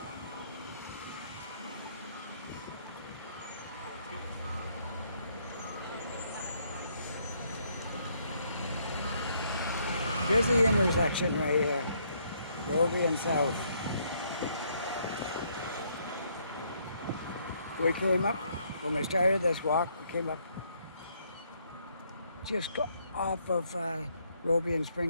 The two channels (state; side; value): inverted; both; correlation -0.70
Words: Busy intersection right here. Roby and South. We came up, when we started this walk, we came up just off of Roby and